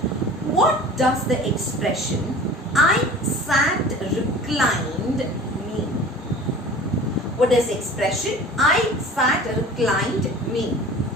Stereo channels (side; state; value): both; normal; correlation 0.41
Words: What does the expression "I sat reclined" mean? What does the expression "I sat reclined" mean?